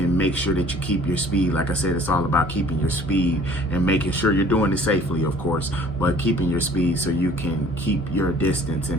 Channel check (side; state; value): both; normal; correlation 0.53